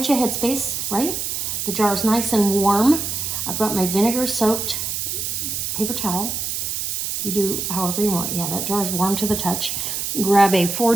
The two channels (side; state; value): right; noise; hiss, 2 dB below the sound